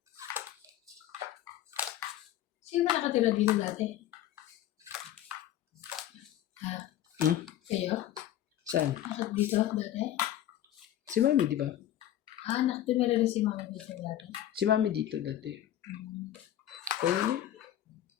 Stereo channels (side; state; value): right; quieter; 12.3 dB